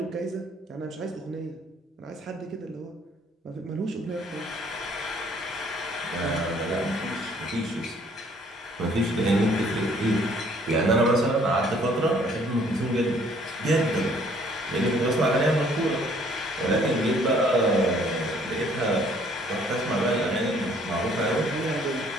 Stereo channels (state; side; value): normal; both; correlation 0.60